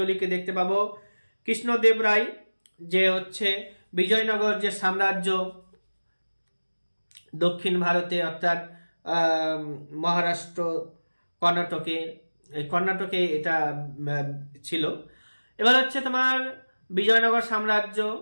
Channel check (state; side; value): inverted; both; correlation -1.00